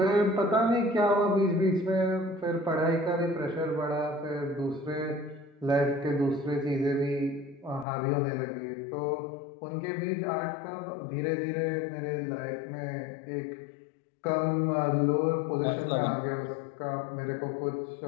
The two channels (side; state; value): right; drops out; at 7.9 s